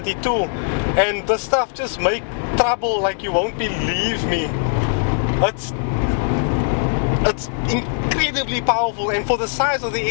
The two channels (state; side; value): silent; right; digital silence